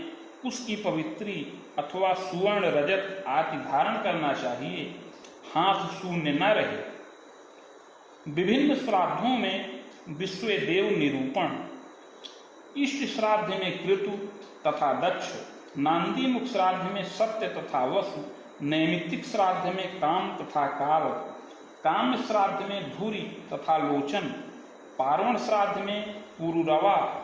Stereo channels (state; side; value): identical; both; correlation 1.00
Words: उसकी पवित्री अथवा सुवर्ण रजत आदि धारण करना चाहिए, हाथ शून्य न रहे। विभिन्न श्राद्धों में विश्वदेव निरूपण। इष्ट श्राद्ध में कृतु तथा दक्ष, नांदीमुख श्राद्ध में सत्य तथा वसु, नैमित्तिक श्राद्ध में काम तथा काल, काम श्राद्ध में धूरी तथा लोचन, पार्वण श्राद्ध में पुरुरवा